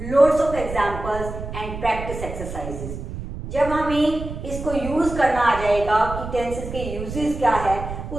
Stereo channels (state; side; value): noise; right; rumble, 8 dB below the sound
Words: loads of examples and practice exercises. जब हमें इसको यूज करना आ जाएगा कि टेंसेस के यूजेस क्या है,